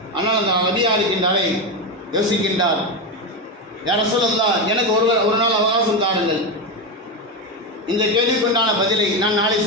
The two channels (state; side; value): normal; both; correlation 0.13